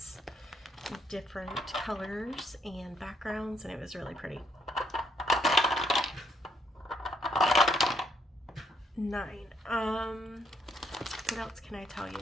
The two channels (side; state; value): both; normal; correlation 0.71